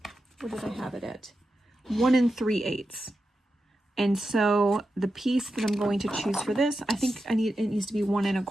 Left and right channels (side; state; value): both; normal; correlation 0.90